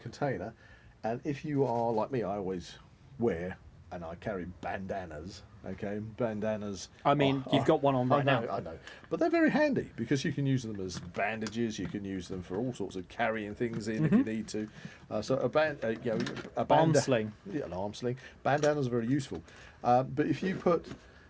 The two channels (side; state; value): both; identical; correlation 1.00